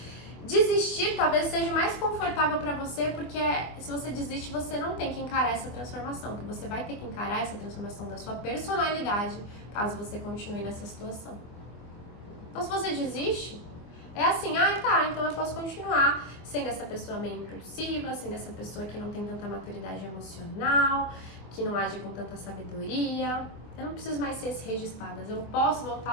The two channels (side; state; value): right; late; 24 ms